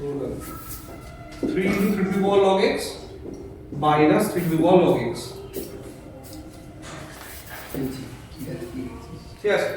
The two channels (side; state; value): both; identical; correlation 1.00